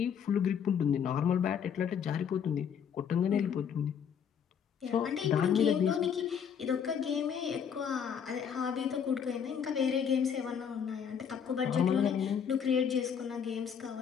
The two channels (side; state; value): right; quieter; 7.6 dB